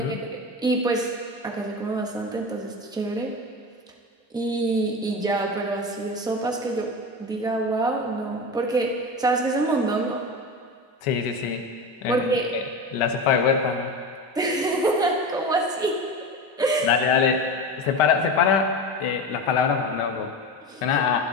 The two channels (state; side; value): normal; both; correlation 0.25